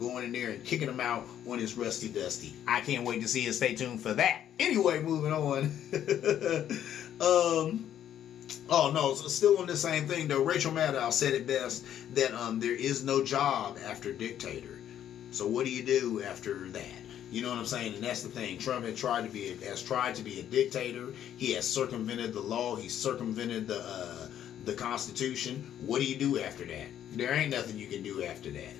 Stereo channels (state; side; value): quieter; right; 10.5 dB